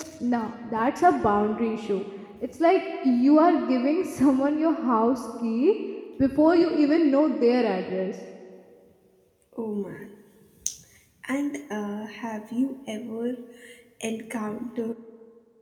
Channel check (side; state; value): both; identical; correlation 1.00